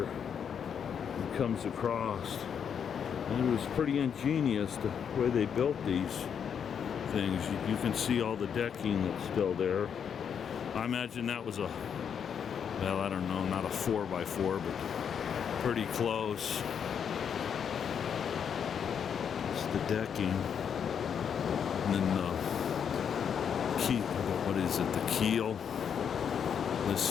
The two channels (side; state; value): right; quieter; 7.6 dB